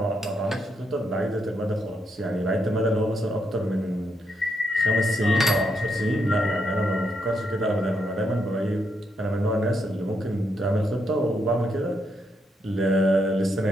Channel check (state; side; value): normal; both; correlation 0.79